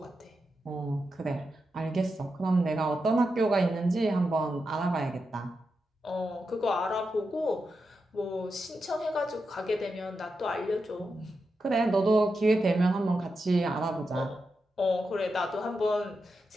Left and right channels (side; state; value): both; normal; correlation 0.87